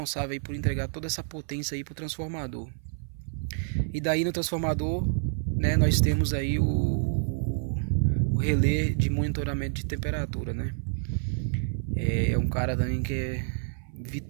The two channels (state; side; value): silent; left; 59 dB below the other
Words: aí por entregar toda essa potência aí para o transformador. E daí no transformador, né? Nós temos aí o relé de monitoramento de temperatura, né? É um cara também que é